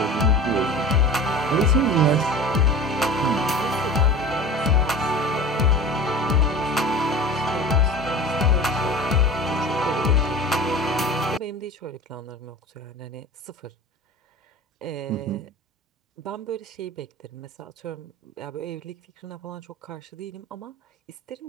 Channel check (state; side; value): normal; both; correlation 0.36